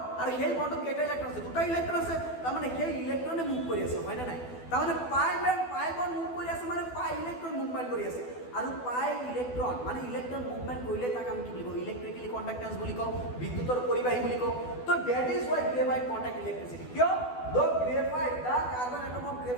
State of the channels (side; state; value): right; late; 12 ms